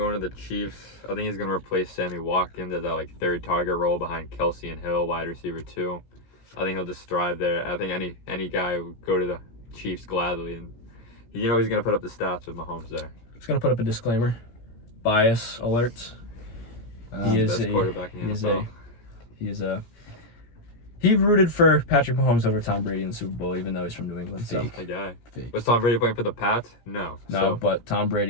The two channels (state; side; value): late; right; 17 ms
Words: to the Chiefs. I think he's going to replace Sammy Watkins as that like third target role behind Kelsey and Hill, wide receiver 2. I think he'll just thrive there. I think any guy would go to the Chiefs gladly, and he's going to put up the stats with Mahomes there. Just gonna put up a disclaimer. Bias alert. He is Best quarterback in the NFL. He rooted for Patrick Mahomes over Tom Brady in the Super Bowl, even though he's from New England. So A guy. Fake. Was Tom Brady playing for the Pats? No. So, but Tom